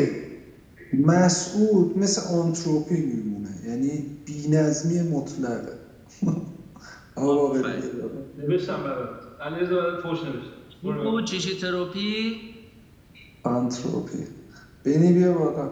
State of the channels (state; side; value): identical; both; correlation 1.00